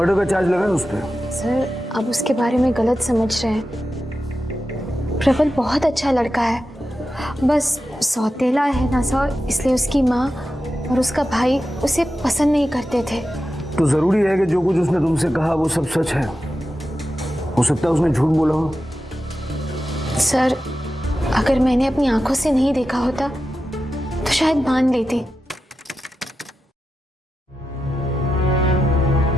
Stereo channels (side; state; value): both; normal; correlation 0.91